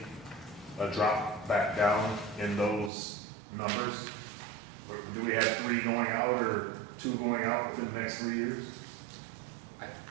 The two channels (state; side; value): drops out; left; at 2.9 s